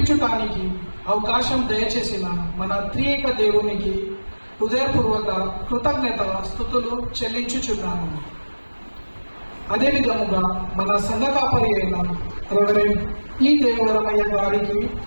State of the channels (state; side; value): inverted; both; correlation -1.00